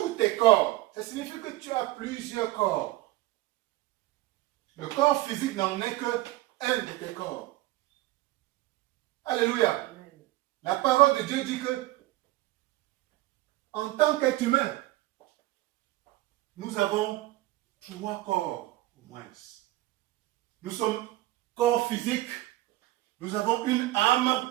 tes corps, ça signifie que tu as plusieurs corps. Le corps physique n'en est que un de tes corps. Alléluia. Amen. La parole de Dieu dit que en tant qu'être humain, nous avons 3 corps au moins. Nous sommes corps physique, nous avons une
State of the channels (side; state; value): left; quieter; 17.9 dB